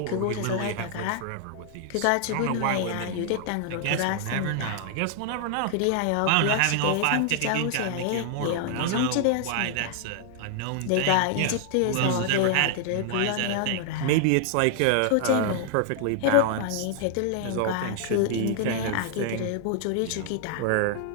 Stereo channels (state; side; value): different; both; correlation 0.00